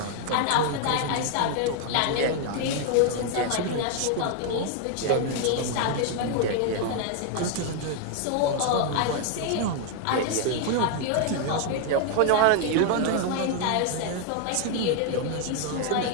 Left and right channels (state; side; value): different; both; correlation 0.00